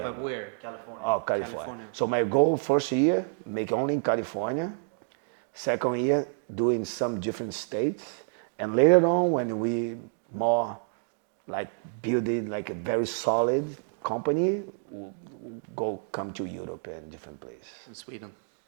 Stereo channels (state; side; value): silent; left; 59 dB below the other